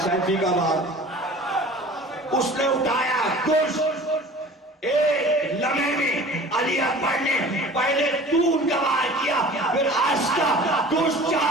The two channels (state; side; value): normal; both; correlation 0.43